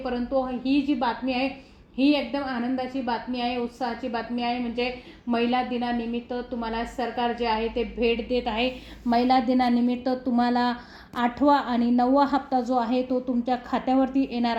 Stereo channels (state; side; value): identical; both; correlation 1.00